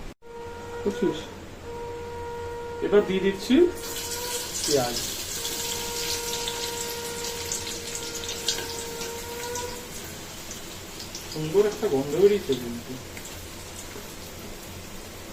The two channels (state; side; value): identical; both; correlation 1.00